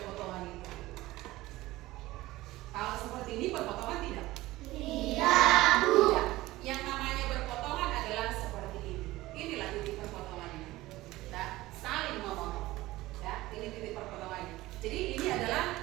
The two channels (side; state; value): left; quieter; 17.9 dB